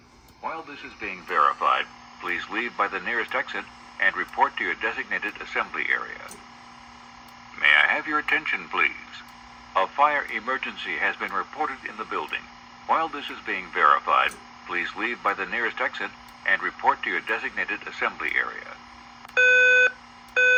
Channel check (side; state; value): both; identical; correlation 1.00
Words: While this is being verified, please leave by the nearest exit and report to your designated assembly area. May I have your attention, please? A fire emergency has been reported in the building. While this is being verified, please leave by the nearest exit and report to your designated assembly area.